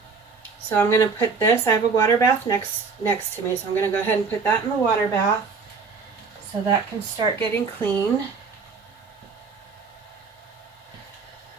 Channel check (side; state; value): left; quieter; 5.0 dB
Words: So I'm going to put this, I have a water bath next to me, so I'm going to go ahead and put that in the water bath so that can start getting clean.